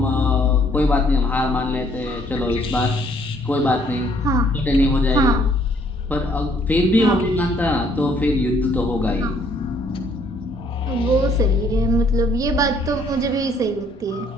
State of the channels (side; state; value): both; normal; correlation 0.64